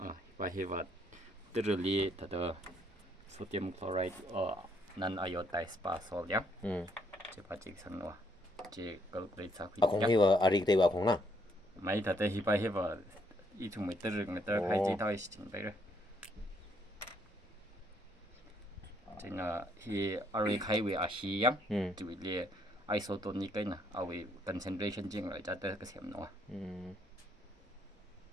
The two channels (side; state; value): both; normal; correlation 0.70